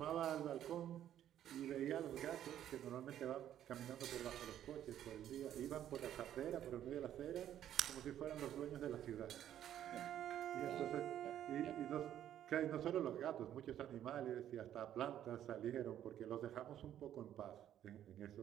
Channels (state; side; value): quieter; left; 11.0 dB